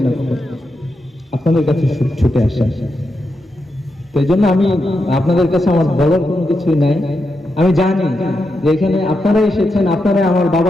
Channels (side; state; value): both; normal; correlation 0.86